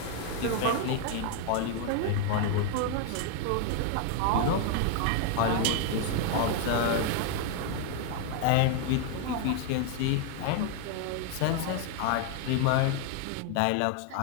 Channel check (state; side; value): different; both; correlation 0.00